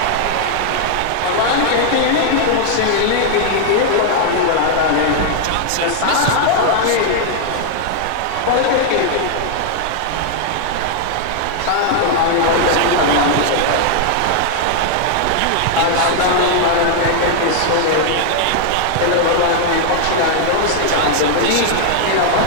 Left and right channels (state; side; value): different; both; correlation 0.00